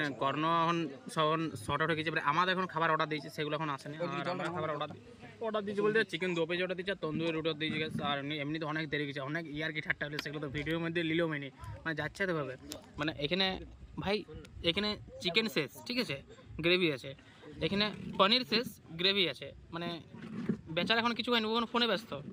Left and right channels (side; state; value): both; identical; correlation 1.00